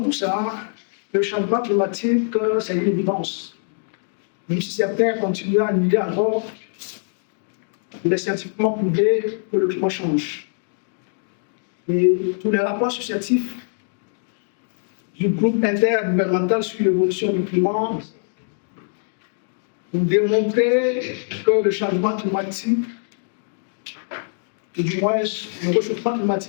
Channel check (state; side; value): silent; right; digital silence